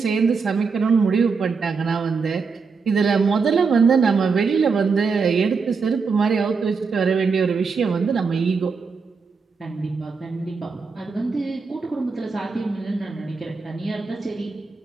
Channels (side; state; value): left; quieter; 5.0 dB